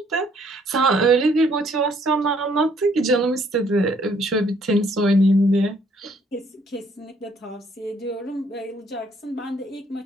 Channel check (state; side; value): normal; both; correlation 0.65